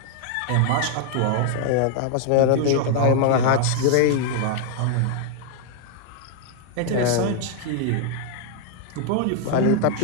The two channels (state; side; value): different; both; correlation -0.01